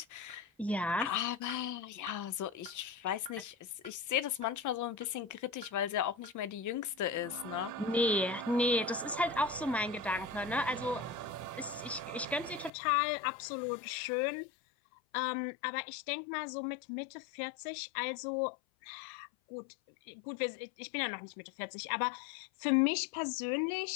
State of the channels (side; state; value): right; drops out; at 12.7 s